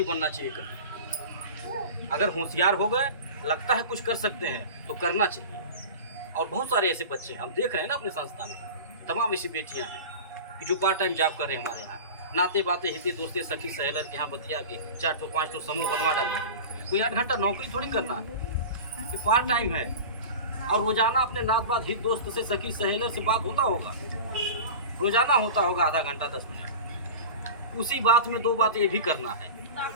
बनना चाहिए कभी। अगर होशियार हो गए, लगता है कुछ कर सकते हैं तो करना चाहिए। और बहुत सारे ऐसे बच्चे हम देख रहे हैं ना अपने संस्था में, तमाम ऐसी बेटियां हैं कि जो पार्ट टाइम जॉब कर रहे हैं हमारे यहाँ। नाते बाते हिते दोस्ते सखी सहेलर के यहाँ बतिया के 4 ठो 5 ठो समूह बनवा डाले। कोई 8 घंटा नौकरी थोड़ी करना है, कि पार्ट टाइम है। और रोजाना अपने नात बात हित दोस्त से, सखी सहेलर से बात होता होगा, रोजाना होता होगा आधा घंटा 10 मिनट। उसी बात में 2 बात ये भी करना है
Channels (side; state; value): both; inverted; correlation -0.33